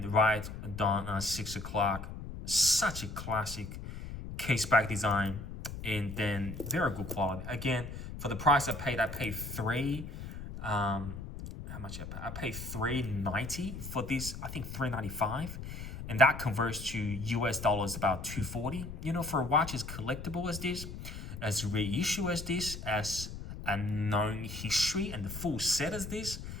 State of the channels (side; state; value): left; noise; rumble, 9 dB below the sound